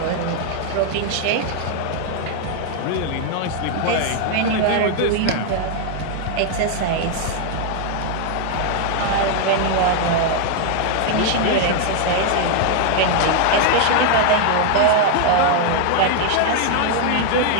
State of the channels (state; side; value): different; both; correlation 0.00